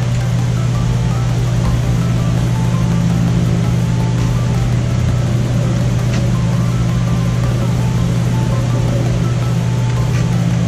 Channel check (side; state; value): both; identical; correlation 1.00